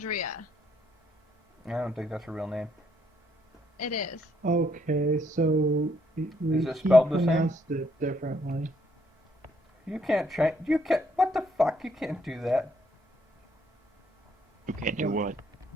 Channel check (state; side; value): normal; both; correlation 0.71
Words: I don't think that's her real name. It is. Okay, so Is it spelled the same? pronounced it differently. You can't change. You can't. What the fuck? You can't do that. You can't do what?